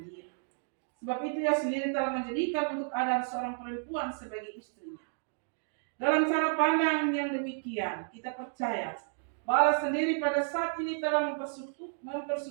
dia. Sebab itu ia sendiri telah menjadikan untuk Adam seorang perempuan sebagai istrinya. Dalam cara pandang yang demikian, kita percaya bahwa Allah sendiri pada saat ini telah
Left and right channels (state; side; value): silent; left; digital silence